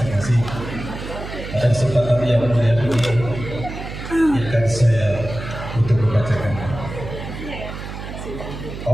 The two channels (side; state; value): right; noise; hum, 9 dB below the sound